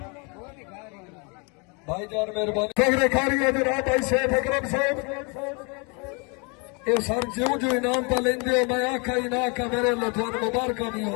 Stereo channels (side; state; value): right; quieter; 32.9 dB